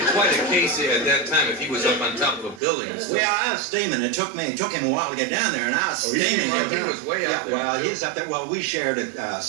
quite a case at that time if he was up on top of a building. Well, I was steaming. It took him a while to get down there, and I was steaming. He was way up there. Well, he's up there. Well, we shared a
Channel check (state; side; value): drops out; left; at 2.6 s